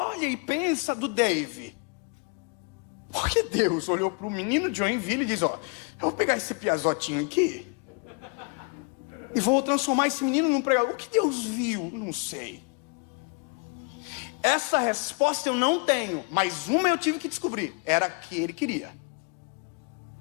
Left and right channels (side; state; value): right; quieter; 33.3 dB